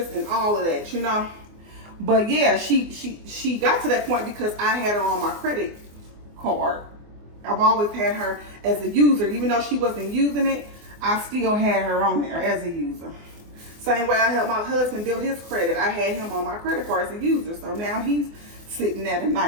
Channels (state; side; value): late; left; 24 ms